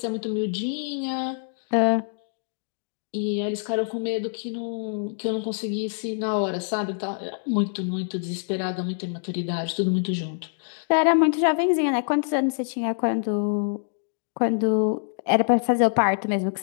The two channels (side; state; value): right; silent; digital silence